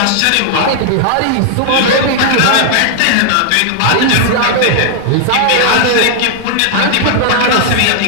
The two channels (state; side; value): different; both; correlation 0.00